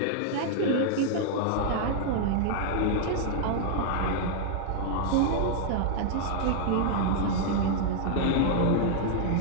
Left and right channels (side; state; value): both; different; correlation -0.01